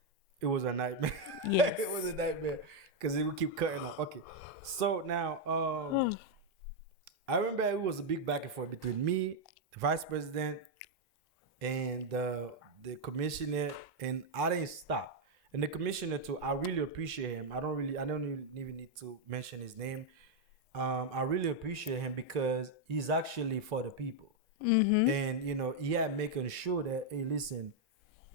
It was a nightmare. Yes. It was a nightmare because it would keep cutting off. Okay. So now, I remember it was a big back and forth between me, the vice president, and the commissioner, and I didn't stop. And the commissioner too, I really appreciate him. I don't even need to mention his name. I really appreciate him because he's actually for the people. And he had making sure that, hey, listen,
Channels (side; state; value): both; normal; correlation 0.01